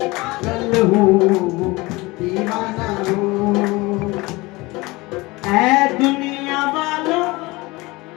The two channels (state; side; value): quieter; right; 22.4 dB